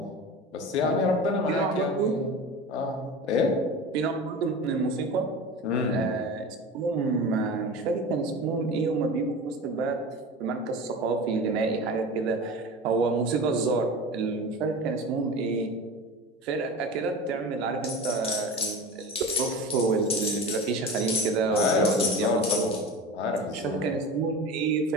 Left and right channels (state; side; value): normal; both; correlation 0.32